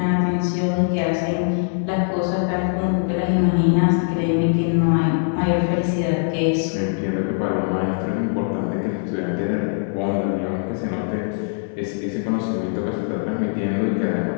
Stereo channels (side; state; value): right; silent; 60 dB below the other